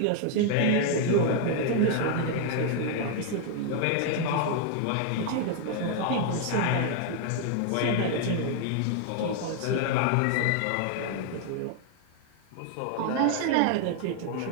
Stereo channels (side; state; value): both; different; correlation 0.00